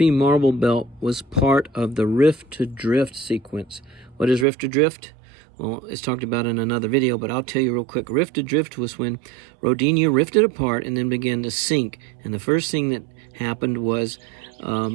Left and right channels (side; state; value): left; drops out; at 4.5 s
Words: Marble Belt was part of the Rift to Drift sequence. What is Rift to Drift? Well, it's talked about in another video, but I'll tell you real quick. Rift to Drift was when Rodinia rifted apart and then began to sink. And the first thing that happened was